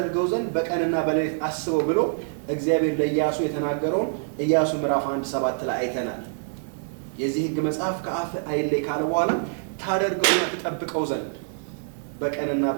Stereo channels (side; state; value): left; silent; 61 dB below the other